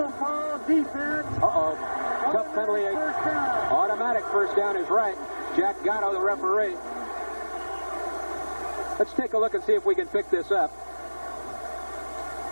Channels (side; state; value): both; inverted; correlation -1.00